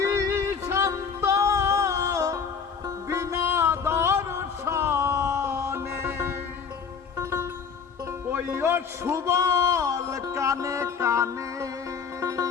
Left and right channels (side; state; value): right; quieter; 6.2 dB